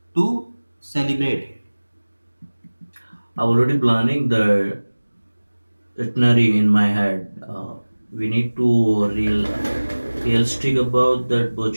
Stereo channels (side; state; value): both; inverted; correlation -1.00